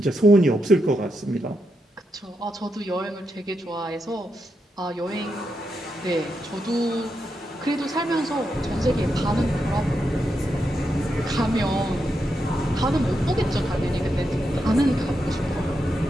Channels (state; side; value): normal; both; correlation 0.84